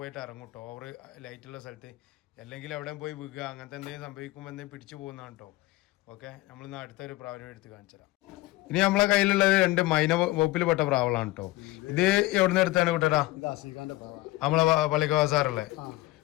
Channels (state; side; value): quieter; right; 18.7 dB